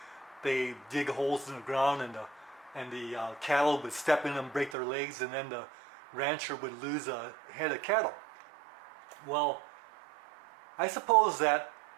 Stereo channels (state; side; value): drops out; left; at 4.8 s